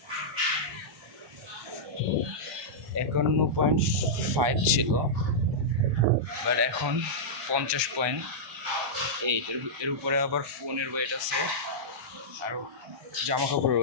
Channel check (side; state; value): left; late; 1.2 ms